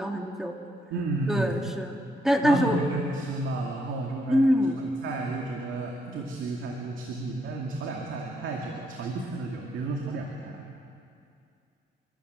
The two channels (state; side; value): normal; both; correlation 0.75